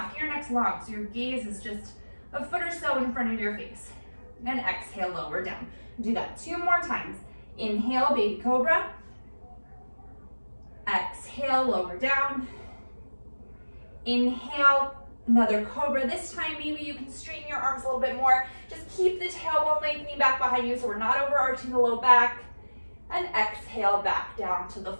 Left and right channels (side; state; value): both; inverted; correlation -1.00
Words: of your neck's long, so your gaze is just a foot or so in front of your face. And exhale, lower down. Do that 2 more times. Inhale, baby cobra. Exhale, lower down. Inhale, another cobra. This time, maybe you can straighten your arms a little bit more. Just keep the tailbone lengthening back behind you so we're not overarching the low back. And exhale, back down to the